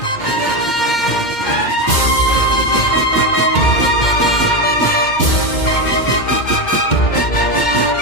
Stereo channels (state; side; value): late; right; 2.1 ms